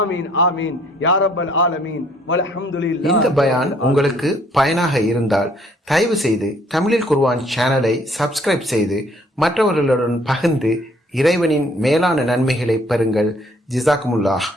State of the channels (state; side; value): normal; both; correlation 0.62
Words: ஆமீன் யா ரப்பல் ஆலமீன் வல்ஹம்துலில்லாஹ். இந்த பயான் உங்களுக்கு பயனாக இருந்தால் தயவு செய்து தமிழில் குர்ஆன் சேனலை சப்ஸ்கிரைப் செய்து மற்றவர்களுடன் பகிர்ந்து இறைவனின் மேலான நன்மைகளை பெறுங்கள். ஜிசாக்குமுல்லாஹ்